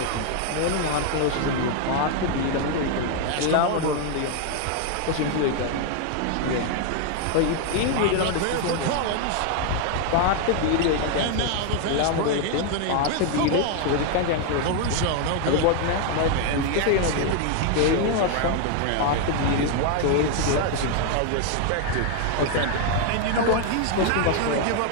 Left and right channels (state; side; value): different; both; correlation 0.00